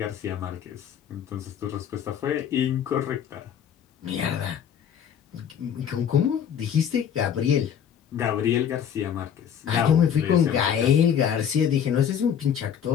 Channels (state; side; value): quieter; right; 8.6 dB